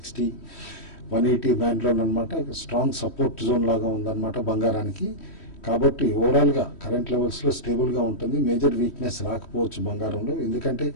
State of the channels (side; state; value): right; late; 3.1 ms